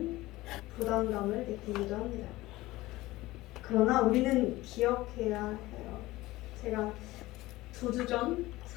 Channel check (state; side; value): quieter; right; 18.5 dB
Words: 부담감을 느끼기도 합니다. 그러나 우리는 기억해야 해요. 제가 2주 전,